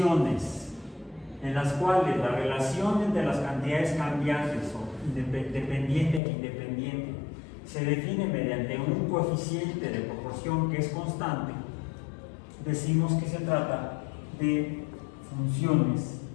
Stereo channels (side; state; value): right; drops out; at 6.2 s